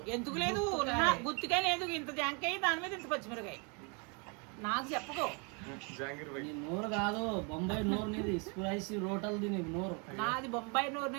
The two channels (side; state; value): left; quieter; 33.9 dB